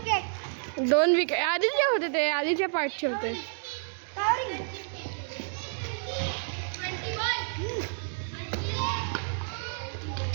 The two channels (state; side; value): silent; left; digital silence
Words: 2 विकेट आधीचे होते. ते आधीच्या पार्टचे होते. 21.